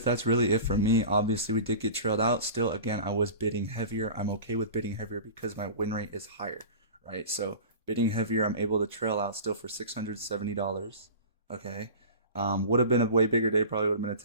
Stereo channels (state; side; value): inverted; both; correlation -0.35